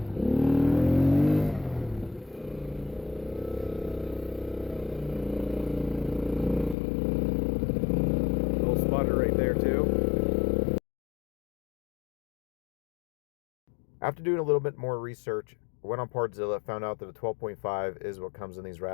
After doing a little bit more research, I went on Partzilla, found out that a 12.5 is what comes in these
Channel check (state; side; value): drops out; right; at 6.8 s